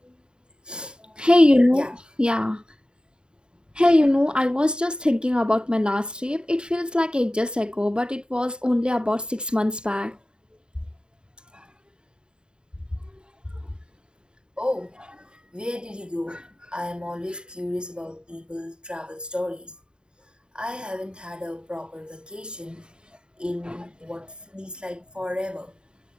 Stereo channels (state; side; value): late; left; 0.049 ms